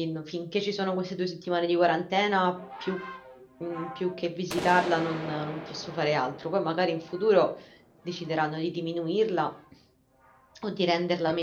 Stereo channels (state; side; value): identical; both; correlation 1.00